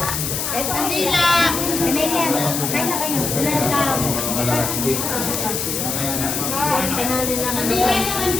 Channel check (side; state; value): left; noise; hiss, 2 dB below the sound